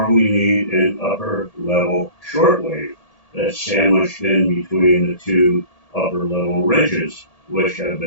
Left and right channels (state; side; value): late; right; 1.8 ms